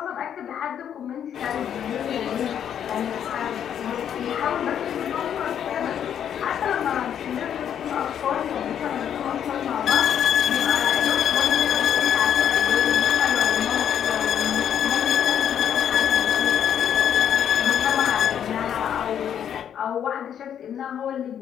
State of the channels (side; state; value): right; quieter; 9.2 dB